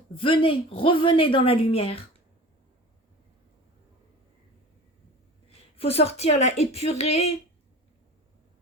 Venez, revenez dans la lumière. Il faut sortir là, épurer.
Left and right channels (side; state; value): both; normal; correlation 0.37